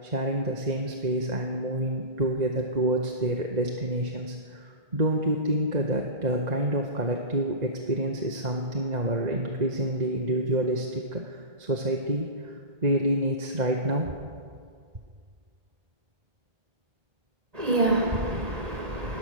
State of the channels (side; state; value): left; late; 1.8 ms